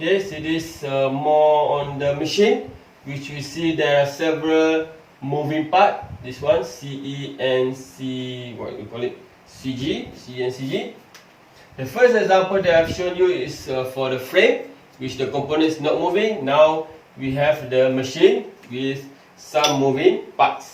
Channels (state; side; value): identical; both; correlation 1.00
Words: so this more on the machine, which we see there are several moving parts. This one, CE and what we call it, CG, CE and CG. The first example that I've shown you is for the frame, which the component is not moving. Now we have the machine with some moving